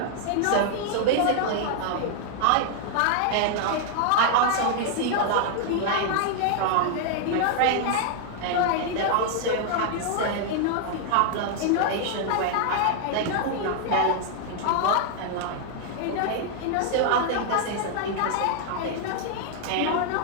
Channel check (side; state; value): both; different; correlation 0.00